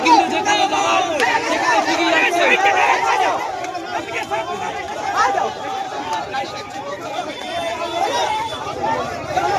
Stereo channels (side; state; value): both; identical; correlation 1.00